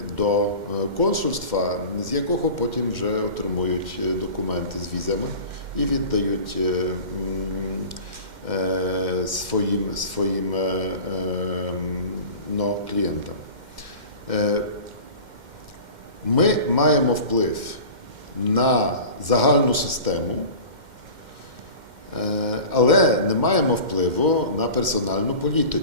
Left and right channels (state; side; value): late; left; 2.1 ms